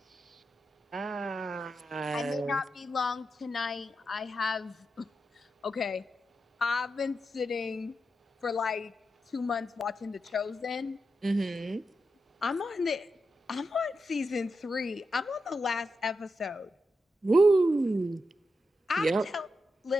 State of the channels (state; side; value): normal; both; correlation 0.87